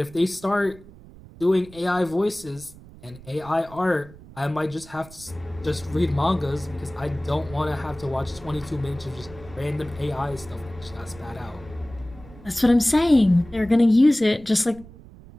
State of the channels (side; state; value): right; noise; rumble, 20 dB below the sound